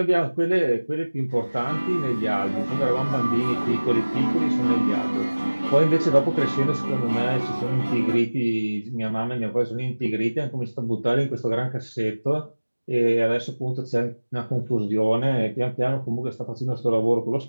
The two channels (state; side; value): inverted; both; correlation -1.00